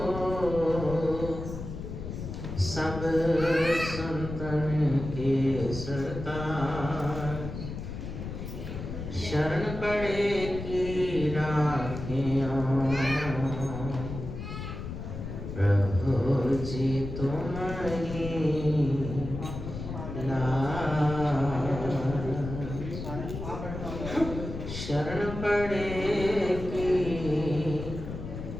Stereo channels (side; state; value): left; noise; rumble, 8 dB below the sound